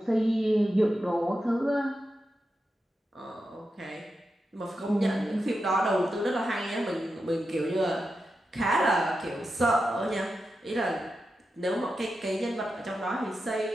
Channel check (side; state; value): both; normal; correlation 0.89